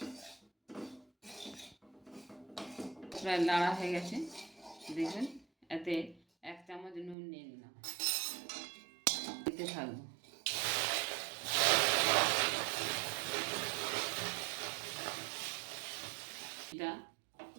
প্রায় নাড়া হয়ে গেছে। দেখবেন এতে 1 চামচ নুন নিয়ে নিলাম, দিতে থাকবো। এটা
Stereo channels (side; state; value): left; drops out; at 7.2 s